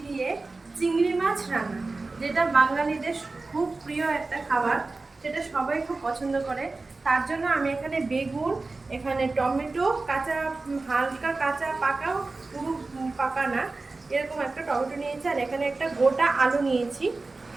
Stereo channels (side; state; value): left; quieter; 3.5 dB